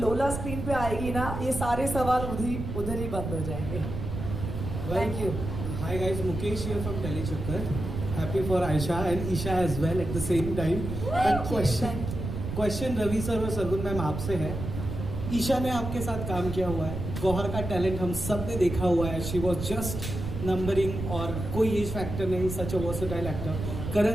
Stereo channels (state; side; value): noise; right; rumble, 5 dB below the sound